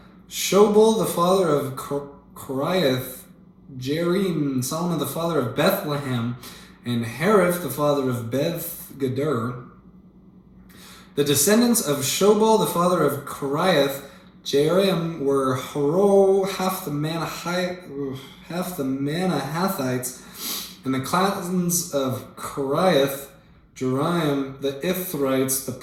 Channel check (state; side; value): identical; both; correlation 1.00